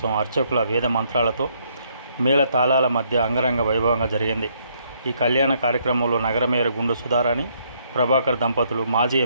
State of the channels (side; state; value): both; inverted; correlation -0.70